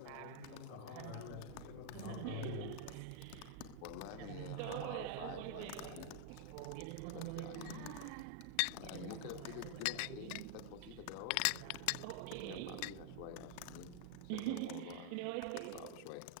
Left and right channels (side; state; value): both; different; correlation 0.00